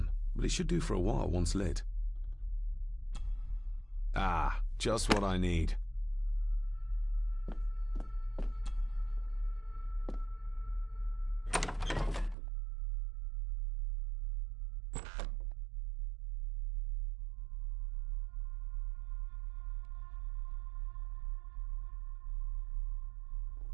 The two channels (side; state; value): left; drops out; at 12.4 s